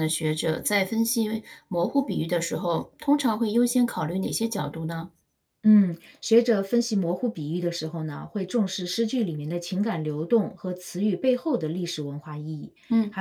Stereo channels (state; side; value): identical; both; correlation 1.00